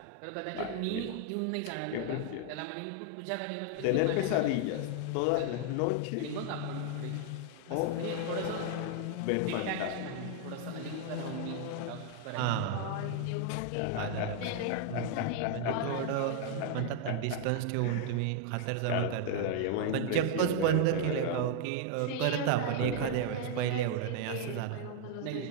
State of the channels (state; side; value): different; both; correlation 0.00